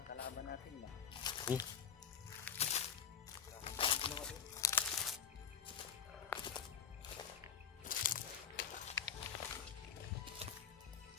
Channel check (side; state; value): right; quieter; 7.6 dB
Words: kalaban natin ba. Sige.